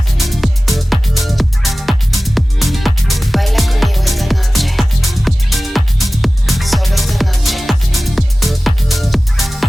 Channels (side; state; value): both; normal; correlation 0.97